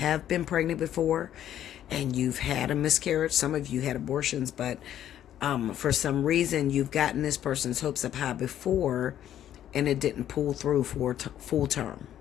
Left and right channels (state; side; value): quieter; right; 11.2 dB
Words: been pregnant before and you've had a miscarriage. Some of you had abortions, but for some reason you've gotten this person's hopes up high before and it didn't pull through for full term.